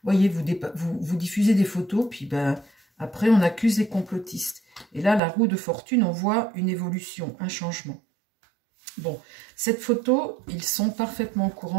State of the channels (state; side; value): drops out; left; at 5.2 s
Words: voyez, vous diffusez des photos, puis ben, après on accuse les complotistes. Et là, la roue de fortune, on voit une évolution, un changement. Bon, cette photo, ils sont parfaitement au